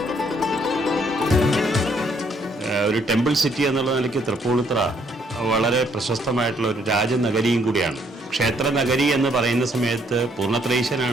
ഒരു temple city എന്നുള്ള നിലയ്ക്ക് തൃപ്പൂണിത്തുറ വളരെ പ്രശസ്തമായിട്ടുള്ള ഒരു രാജനഗരിയും കൂടിയാണ്. ക്ഷേത്ര നഗരി എന്ന് പറയുന്ന സമയത്ത്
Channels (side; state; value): both; normal; correlation 0.68